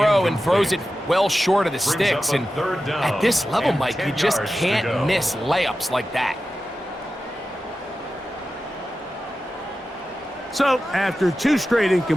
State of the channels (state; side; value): normal; both; correlation 0.93